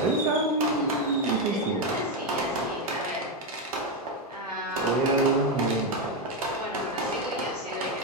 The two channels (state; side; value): normal; both; correlation 0.07